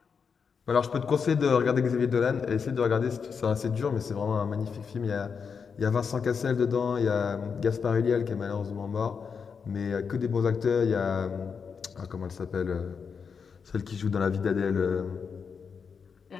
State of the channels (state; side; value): quieter; right; 6.0 dB